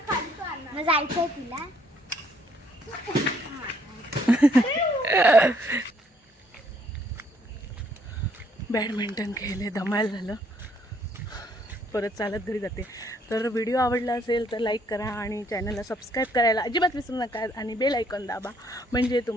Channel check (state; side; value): normal; both; correlation 0.67